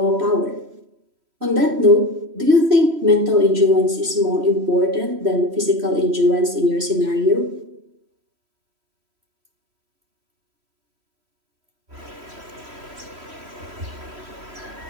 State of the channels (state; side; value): late; left; 3.1 ms